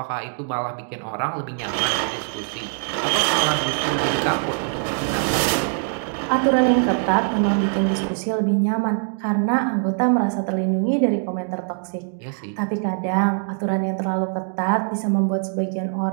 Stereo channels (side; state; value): left; silent; 64 dB below the other